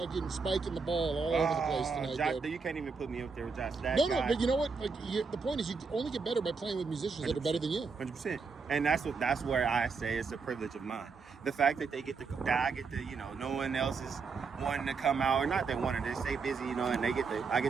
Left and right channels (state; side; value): quieter; left; 4.9 dB